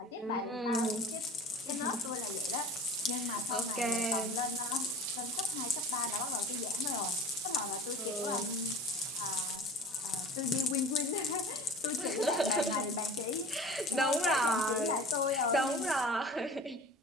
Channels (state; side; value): normal; both; correlation 0.40